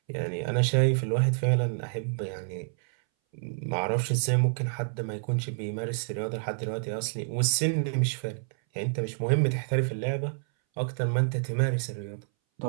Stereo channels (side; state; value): left; silent; 59 dB below the other